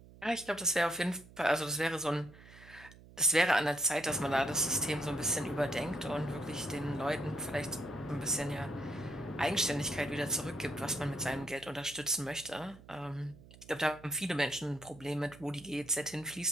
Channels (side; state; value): right; noise; hum, 21 dB below the sound